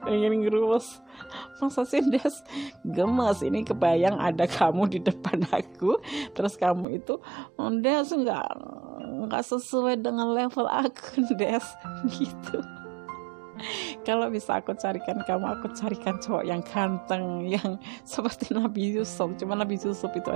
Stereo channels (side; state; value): left; drops out; at 6.9 s